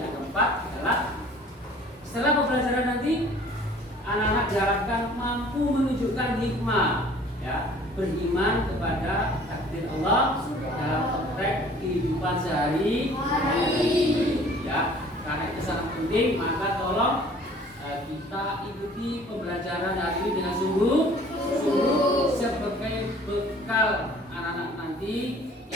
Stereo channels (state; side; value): normal; both; correlation 0.52